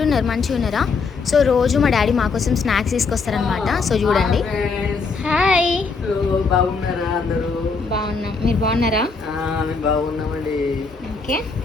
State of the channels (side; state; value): right; quieter; 4.6 dB